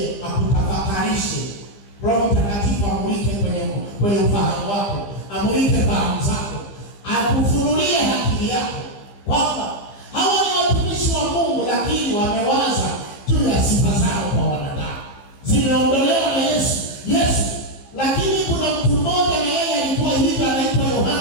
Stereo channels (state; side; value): late; right; 15 ms